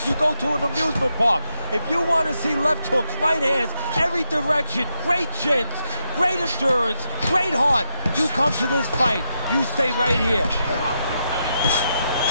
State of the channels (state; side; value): inverted; both; correlation -0.81